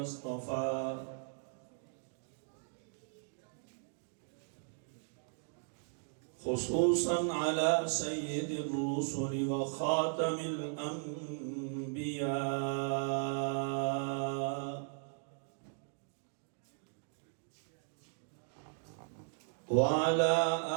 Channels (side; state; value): left; silent; digital silence